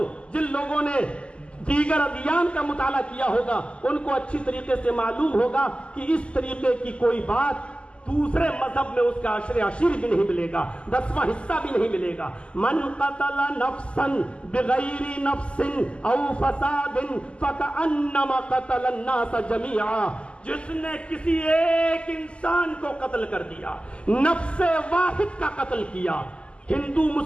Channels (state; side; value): late; right; 0.054 ms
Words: جن لوگوں نے دیگر ادیان کا مطالعہ کیا ہوگا ان کو اچھی طریقے سے معلوم ہوگا کہ اس طریقے کی کوئی بات دوسرے مذہب میں اس کا عشر عشیر بھی نہیں ملے گا، 10واں حصہ بھی نہیں ملے گا۔ من قتل نفسا بغیر نفس او فساد فکأنما قتل الناس جميعا، جس نے کسی ایک انسان کو قتل کر دیا، نفس واحد کا قتل کیا، ہندو